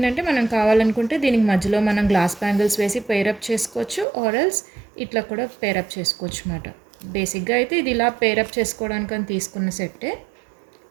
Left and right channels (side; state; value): left; drops out; at 4.0 s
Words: మనం కావాలనుకుంటే దీనికి మధ్యలో మనం గ్లాస్ బ్యాంగిల్స్ వేసి పేరప్ చేసుకోవచ్చు, ఆర్ఎల్స్ ఇట్లా కూడా పేరప్ చేసుకోవచ్చు అన్నమాట. బేసిక్గా అయితే ఇది ఇలా పేరప్ చేసుకోవడానికి అని తీసుకున్న సెట్టే.